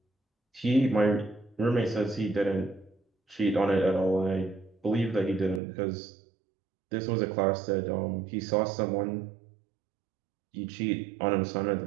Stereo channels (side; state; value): left; drops out; at 5.6 s